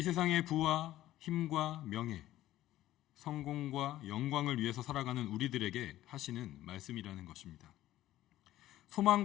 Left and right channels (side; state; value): right; quieter; 14.4 dB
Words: 세상의 부와 힘과 명예, 성공과 영광을 위해서 살아가는 우리들에게 하시는 말씀이라는 것입니다.